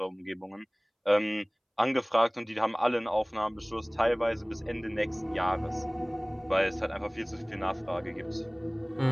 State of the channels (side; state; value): both; identical; correlation 1.00